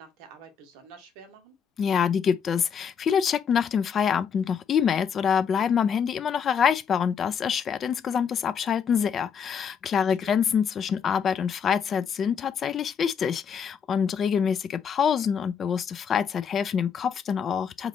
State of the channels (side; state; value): right; quieter; 7.2 dB